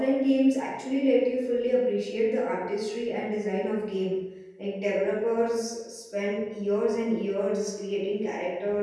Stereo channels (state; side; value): identical; both; correlation 1.00